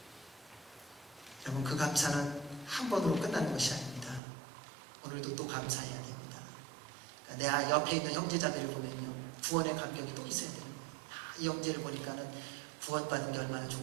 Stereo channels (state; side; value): drops out; left; at 4.2 s